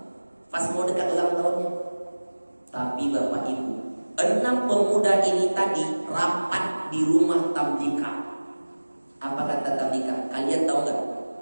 Pas mau dekat ulang tahunnya. Tapi Bapak Ibu, 6 pemuda ini tadi rapat di rumah Tamlika. Apa kata Tamlika? Kalian tahu gak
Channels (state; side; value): inverted; both; correlation -1.00